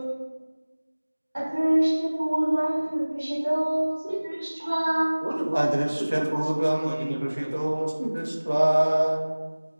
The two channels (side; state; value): both; inverted; correlation -1.00